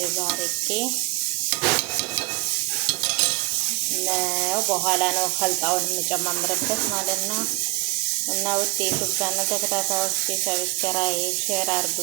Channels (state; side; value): quieter; left; 24.2 dB